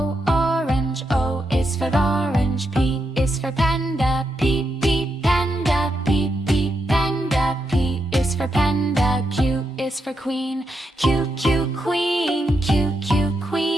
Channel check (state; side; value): normal; both; correlation 0.83